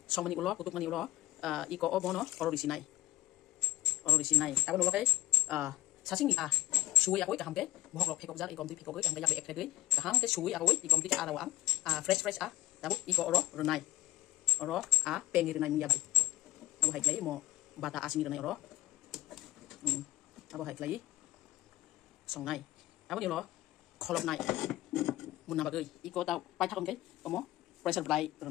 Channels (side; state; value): right; quieter; 17.6 dB